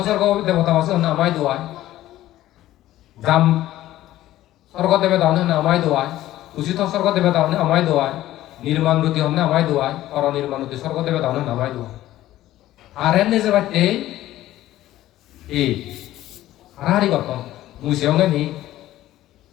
স্বর্গ দেবতা আছে নামাই দুয়ায় জাম স্বর্গ দেবতা নামাই দুয়ায় উচিত স্বর্গ দেবতা নামাই দুয়ায় নির্মাণ রুতি হন নামাই দুয়ায় অর নির্মাণ রুতি স্বর্গ দেবতা নামাই দুয়ায় আর এনে যে বাচ্চে হারাহারি গঠন মুসিও নি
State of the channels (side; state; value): right; quieter; 14.6 dB